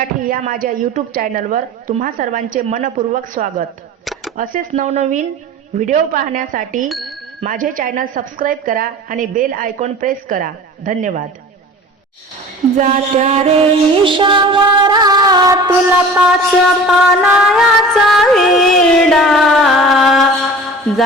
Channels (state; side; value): normal; both; correlation 0.40